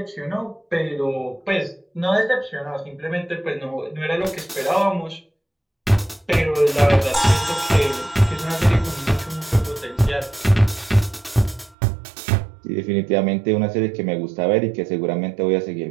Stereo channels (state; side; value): drops out; left; at 11.8 s